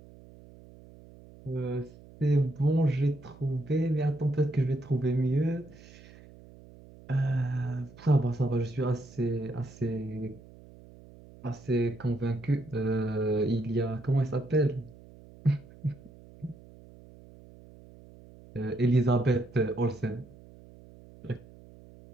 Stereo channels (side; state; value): right; noise; hum, 21 dB below the sound